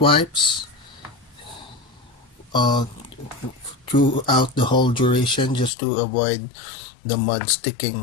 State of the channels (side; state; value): right; drops out; at 5.7 s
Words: uh, throughout the whole duration just to avoid the mud